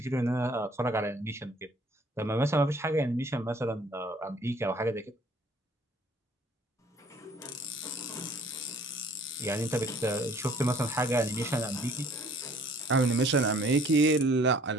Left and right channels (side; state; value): both; normal; correlation 0.56